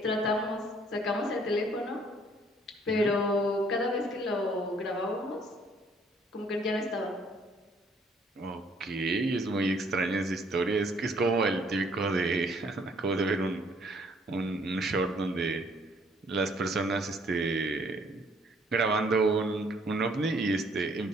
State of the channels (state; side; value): normal; both; correlation 0.62